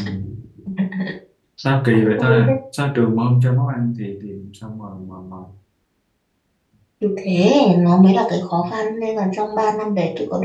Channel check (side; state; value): both; identical; correlation 1.00